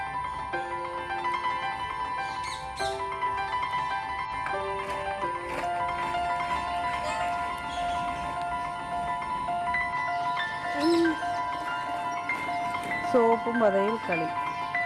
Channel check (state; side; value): identical; both; correlation 1.00